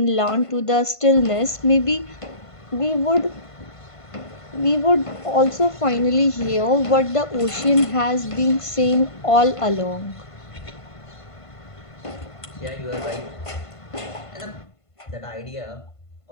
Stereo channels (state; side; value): late; right; 1.5 ms